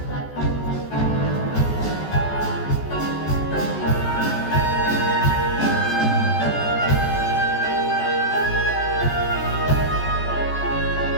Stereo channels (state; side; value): late; right; 14 ms